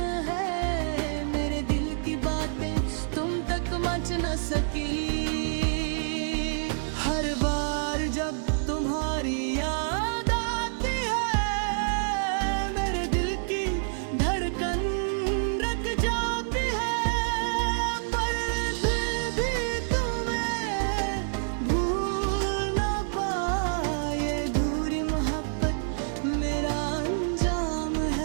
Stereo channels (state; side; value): silent; left; digital silence